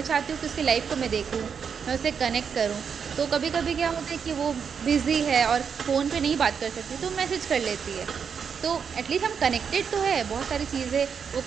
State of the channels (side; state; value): left; quieter; 6.7 dB